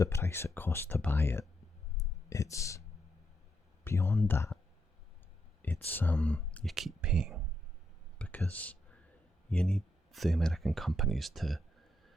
price it costs to buy it. It's beyond that. It's you keep paying because you need the American companies to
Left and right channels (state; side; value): normal; both; correlation 0.81